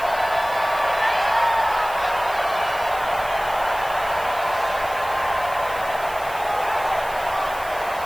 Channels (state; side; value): noise; right; hiss, 17 dB below the sound